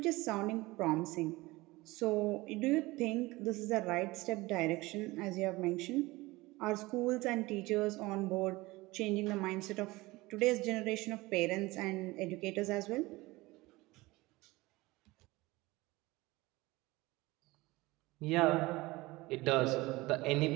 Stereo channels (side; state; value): left; quieter; 20.9 dB